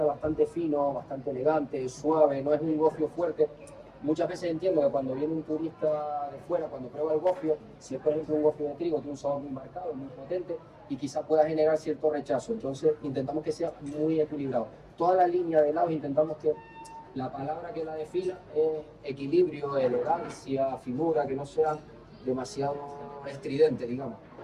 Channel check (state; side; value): identical; both; correlation 1.00